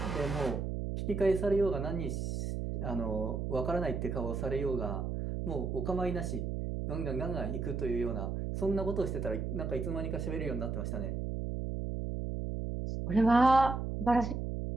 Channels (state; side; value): noise; right; hum, 3 dB below the sound